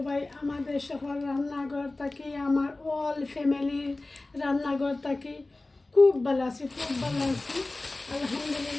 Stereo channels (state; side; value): quieter; right; 3.0 dB